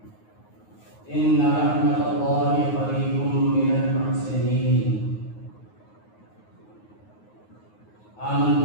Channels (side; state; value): right; late; 9.5 ms